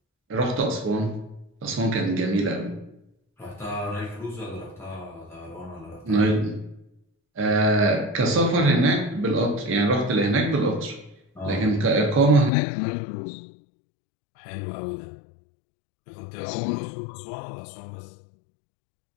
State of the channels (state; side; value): drops out; right; at 12.5 s